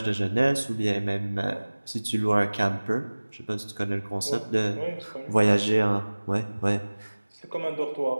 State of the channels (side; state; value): both; inverted; correlation -1.00